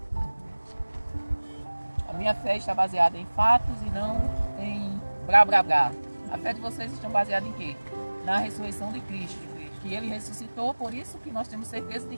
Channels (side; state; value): both; inverted; correlation -1.00